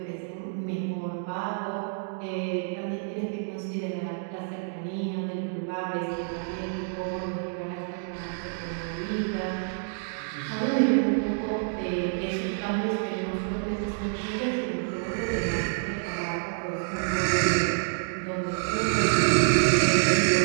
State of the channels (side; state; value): left; silent; digital silence